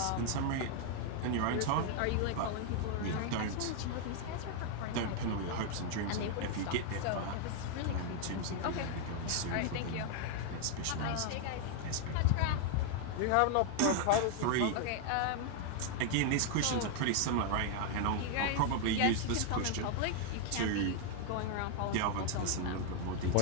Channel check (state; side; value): different; both; correlation 0.00